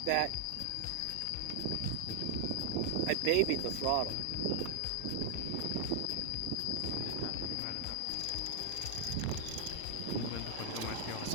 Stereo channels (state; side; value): different; both; correlation 0.00